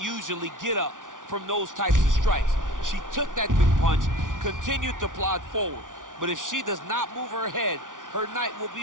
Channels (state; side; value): late; left; 0.88 ms